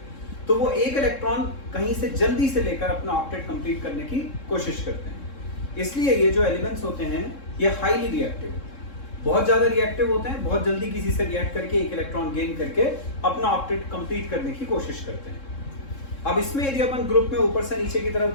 तो वो एक इलेक्ट्रॉन कहीं से जल्दी से लेकर अपना ऑक्टेट कंप्लीट करने की कोशिश करते हैं। इसलिए ये जो एलिमेंट्स होते हैं ये हाईली रिएक्टिव होते हैं, बहुत ज्यादा रिएक्टिव होते हैं, बहुत जल्दी किसी से रिएक्ट करके एक इलेक्ट्रॉन गेन करके अपना ऑक्टेट कंप्लीट करने की कोशिश करते हैं। अब इसमें यदि अपन ग्रुप में ऊपर से नीचे की तरफ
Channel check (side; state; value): right; late; 3.7 ms